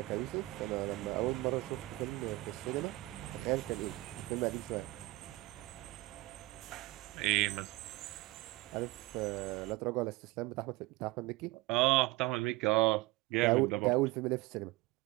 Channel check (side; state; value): left; quieter; 20.4 dB